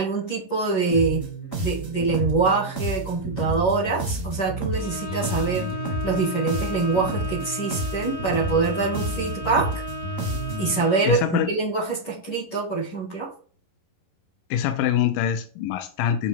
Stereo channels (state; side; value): late; right; 11 ms